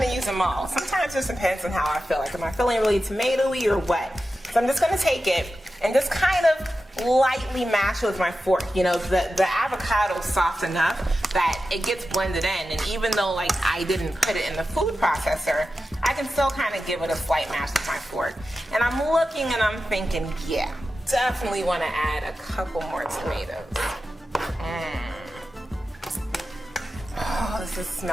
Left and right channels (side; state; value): both; normal; correlation 0.92